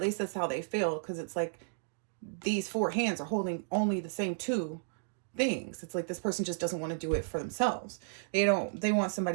least that's how they feel, because it's like these 4 hands are holding only the same 2 things. It's like this person just doesn't want to do it for themselves. They want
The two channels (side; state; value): left; silent; digital silence